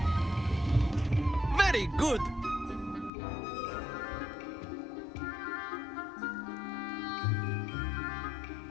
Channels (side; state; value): right; drops out; at 3.1 s